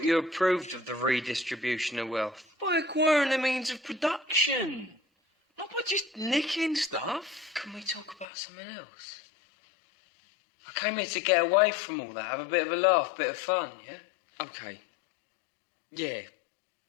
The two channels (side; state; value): right; drops out; at 8.2 s